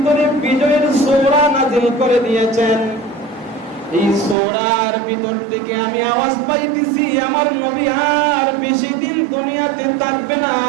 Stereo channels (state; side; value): drops out; left; at 4.4 s